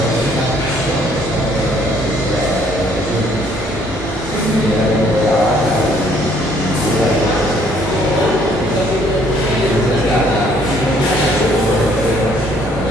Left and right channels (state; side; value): normal; both; correlation 0.63